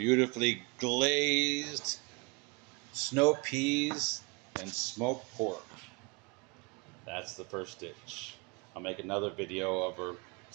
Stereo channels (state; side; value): quieter; left; 29.2 dB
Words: glazed snow peas and smoked pork. That's the first dish. I'll make another video of our